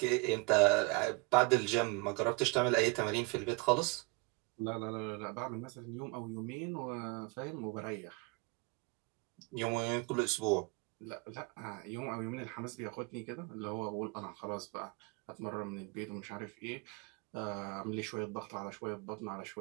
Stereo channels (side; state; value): left; quieter; 27.0 dB